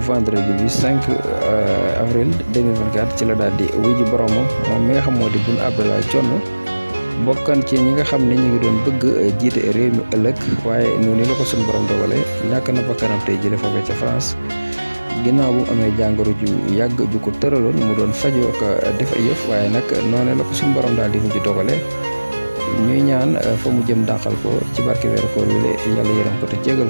bi 5 avril 2024 ci la daal di wuy ji boromam moom mi nga xam moo di Boun Abdallah Dionne bokkan ci ñi nga xam ne ñu ngi doon bëgg jiite réew mi ëllëg waaye noonu la ko suñu borom dogale ñàkk na bakkanam tey jëlee foofee ca France ginnaaw bu mu amee jàngoro ju yàgg ju ko tëraloon mu doon fajoo ko def ay yëf waaye nag noonu la ko suñu borom daal di mujj dogale ñuy ñaan fa mu jëm dàqal ko ci barke weeru koor wi la yàlla yërëm ko te jégal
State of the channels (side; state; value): both; inverted; correlation -1.00